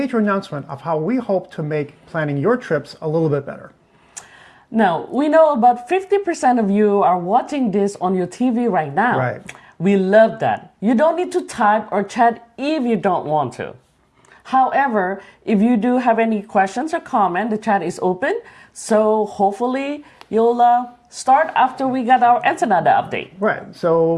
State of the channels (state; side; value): identical; both; correlation 1.00